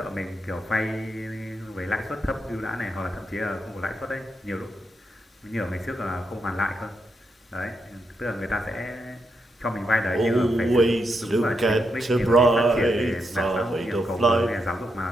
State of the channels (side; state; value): both; normal; correlation 0.82